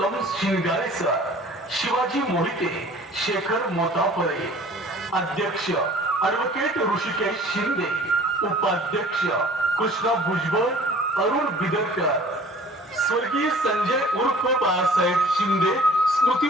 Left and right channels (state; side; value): normal; both; correlation 0.49